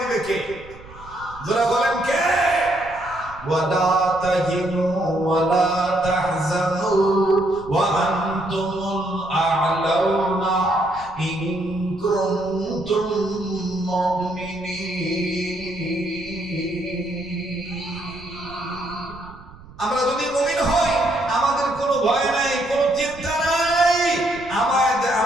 কে? যারা বলেন কে? ওয়ালা তাহিনু ওয়ালা তাহজানু ওয়া আনতুমুল আ'লাউনা ইন কুনতুম মুমিনিন।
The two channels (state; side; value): noise; right; rumble, 19 dB below the sound